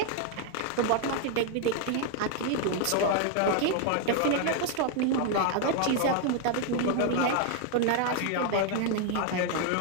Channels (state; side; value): different; both; correlation 0.00